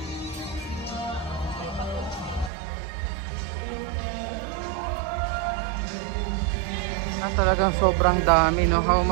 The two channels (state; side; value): drops out; left; at 2.5 s